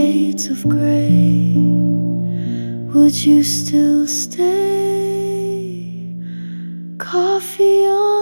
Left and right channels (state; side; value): inverted; both; correlation -1.00